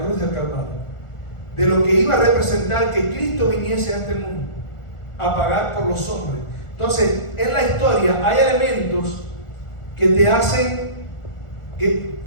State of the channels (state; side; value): late; right; 1.4 ms